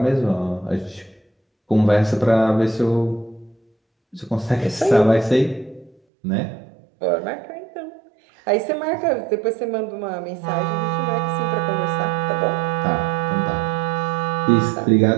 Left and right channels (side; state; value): left; drops out; at 6.0 s